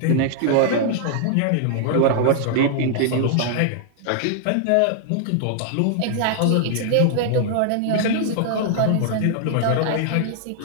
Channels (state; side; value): different; both; correlation -0.01